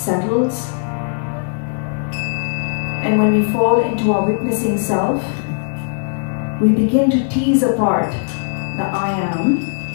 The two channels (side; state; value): right; silent; digital silence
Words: and when we fall into our witnessing self, we begin to tease apart the I am